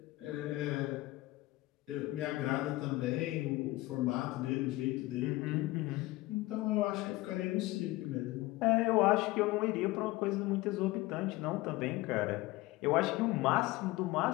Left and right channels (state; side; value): quieter; right; 19.2 dB